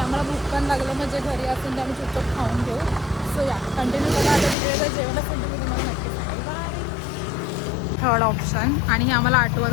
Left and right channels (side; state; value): right; drops out; at 4.5 s